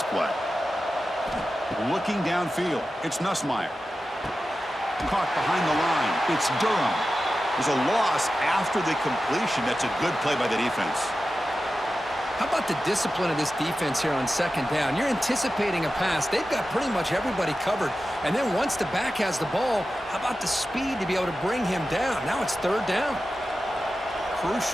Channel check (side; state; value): both; normal; correlation 0.93